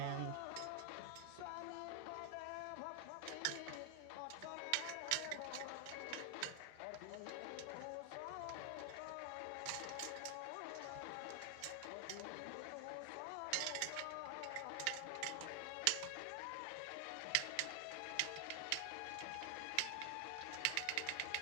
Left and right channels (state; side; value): different; both; correlation 0.00